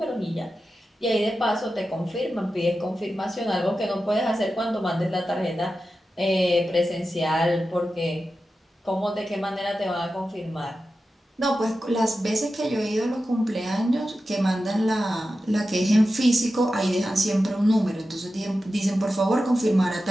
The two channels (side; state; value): both; normal; correlation 0.92